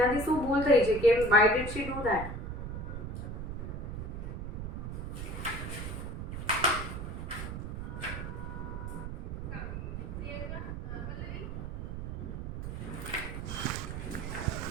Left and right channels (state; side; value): noise; right; rumble, 5 dB below the sound